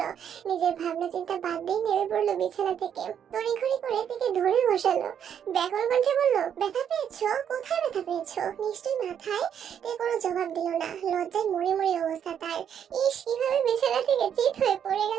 নিজের ভাবনা চিন্তা বাদ দিয়ে নেমে পড়লো বিছানা থেকে। তড়িঘড়ি করে থেকে ধরে বসালো। ব্যাকুল কণ্ঠে বলল, ব্যথা পেয়েছো? কোথায় ব্যথা পেয়েছো? নিশ্চয়ই মাথায়। তে কোনো জবাব দিল না। লজ্জায় মরে মরে অবস্থা তার। ইস, কিভাবে বিছানা থেকে চিত হয়ে পড়ে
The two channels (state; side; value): quieter; left; 8.7 dB